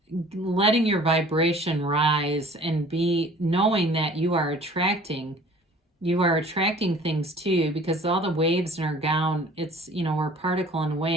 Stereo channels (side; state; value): both; normal; correlation 0.49